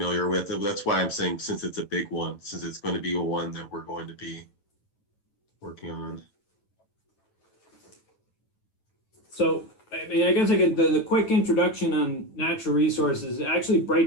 with. That's why I'm saying, since it's a big one, since it's going to be a one that we're going to be working on. So, I mean, I guess I get the quick introduction on natural resources. It actually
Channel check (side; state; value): right; late; 9.0 ms